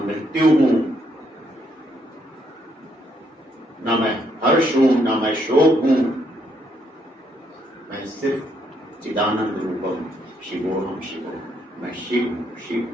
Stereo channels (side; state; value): both; normal; correlation 0.74